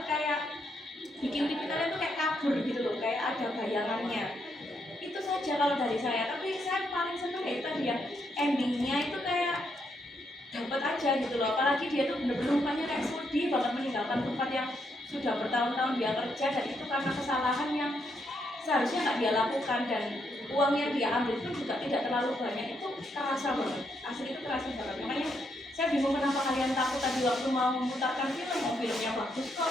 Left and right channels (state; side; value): normal; both; correlation 0.77